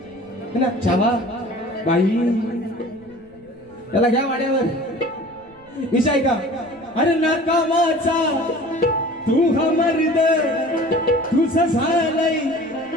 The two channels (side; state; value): right; noise; rumble, 28 dB below the sound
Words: है ना चावा बाई त्याला घ्या वाड्यावर. विषय का अरे नाकामाचा तू हा मर्द तुझं झालंय